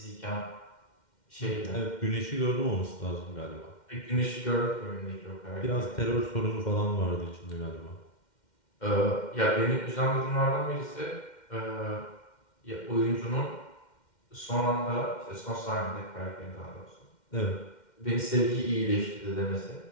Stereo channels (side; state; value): right; late; 2.1 ms